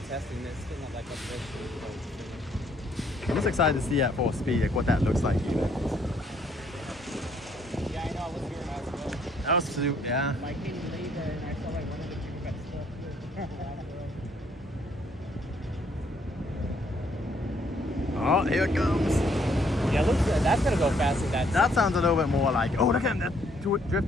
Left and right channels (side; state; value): both; normal; correlation 0.67